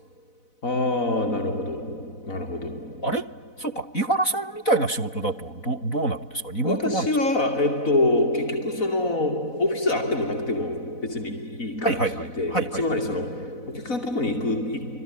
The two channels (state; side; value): late; right; 4.0 ms